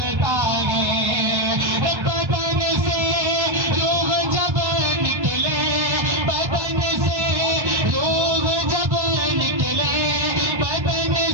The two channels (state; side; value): late; left; 1.3 ms